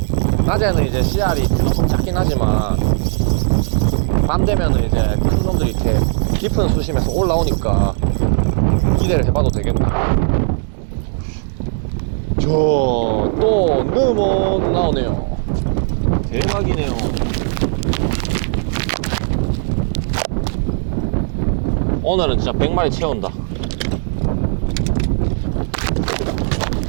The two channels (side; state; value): left; silent; digital silence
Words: 낮에는 이제 씨알이 조금 작긴 하지만 밤 되면은 이제 큰 놈들이 이렇게 깊은 수심에서 올라오니까 기대를 해봐도 되겠다. 또 너무 나오네요. 대박이네요. 오늘은 진짜 100마리 채운다.